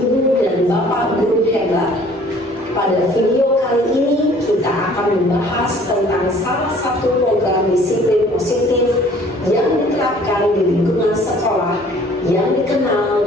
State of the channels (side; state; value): both; normal; correlation 0.54